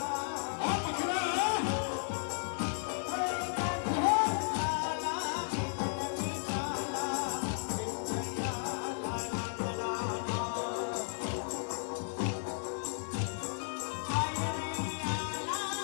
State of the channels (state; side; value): silent; right; digital silence